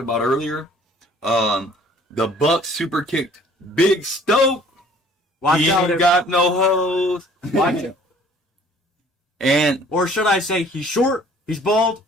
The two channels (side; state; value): both; normal; correlation 0.54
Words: about earlier. The Bucks super kicked Big Stoke. Watch he out. ain't got no hose. Watch it. And or should I say, he's short, he's bald,